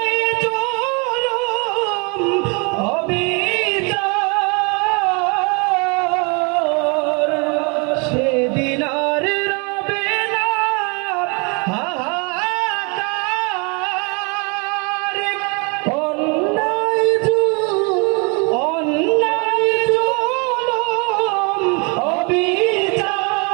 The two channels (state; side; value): quieter; left; 32.3 dB